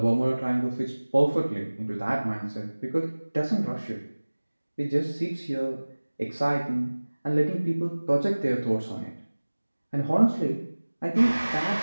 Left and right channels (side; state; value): both; inverted; correlation -1.00